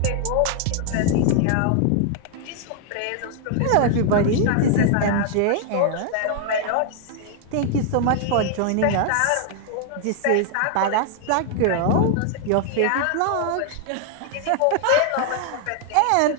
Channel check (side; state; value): both; different; correlation 0.00